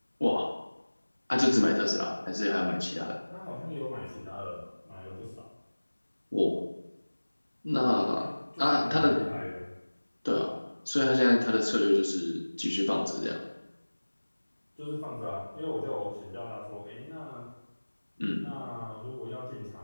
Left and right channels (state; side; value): inverted; both; correlation -1.00